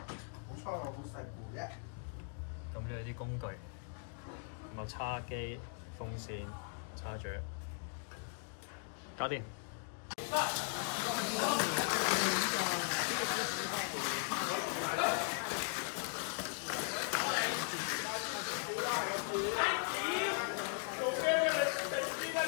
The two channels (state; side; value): silent; right; 52 dB below the other